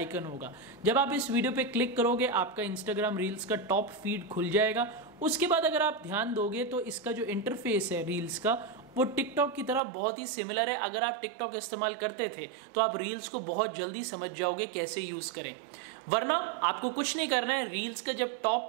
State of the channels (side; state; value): left; drops out; at 9.8 s